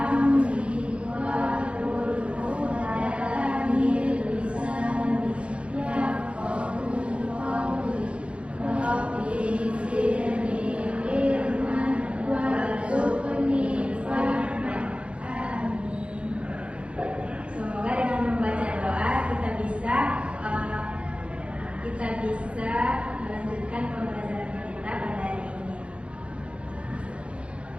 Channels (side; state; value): left; late; 0.060 ms